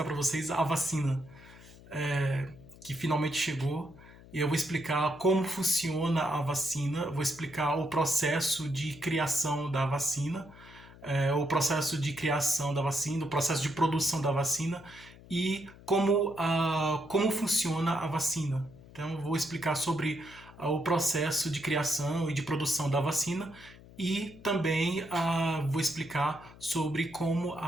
para vocês a vacina que finalmente chegou. E eu vou explicar como funciona a vacina, vou explicar o processo de criação da vacina, o processo de criação da vacina, o processo de produção da vacina e como funciona a vacina. Então, eu vou explicar sobre o processo de criação e de produção da vacina e também vou explicar sobre como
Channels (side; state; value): left; noise; hum, 21 dB below the sound